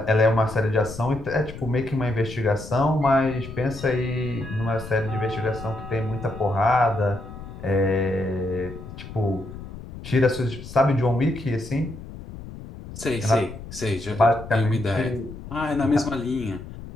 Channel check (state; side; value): noise; left; rumble, 13 dB below the sound